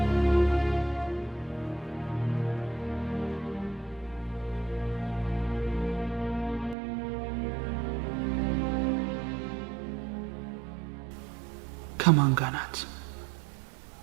ከማን ጋር ናት?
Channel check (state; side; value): drops out; left; at 6.8 s